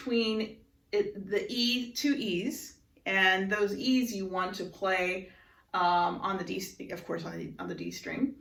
the E, two E's, and those E's you want to play on the D, of course, on the D string.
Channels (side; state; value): both; identical; correlation 1.00